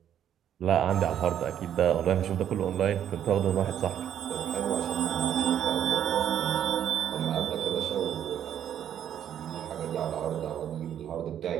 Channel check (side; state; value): left; quieter; 9.9 dB